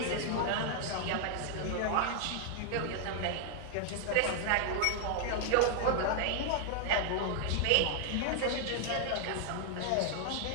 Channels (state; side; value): different; both; correlation 0.00